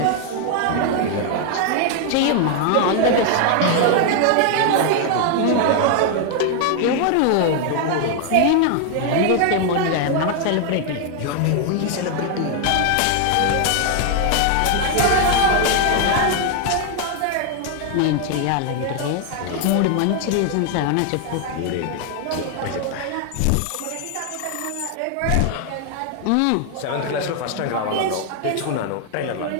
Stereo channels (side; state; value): both; different; correlation 0.00